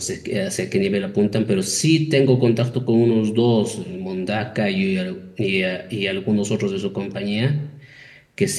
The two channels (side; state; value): both; identical; correlation 1.00